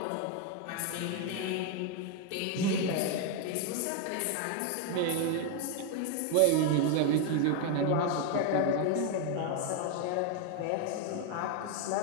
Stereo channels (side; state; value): both; different; correlation 0.01